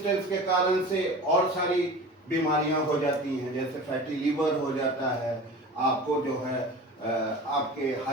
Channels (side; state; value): both; normal; correlation 0.36